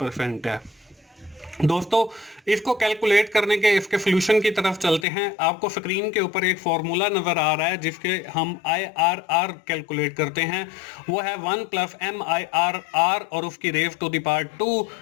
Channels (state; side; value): drops out; right; at 5.1 s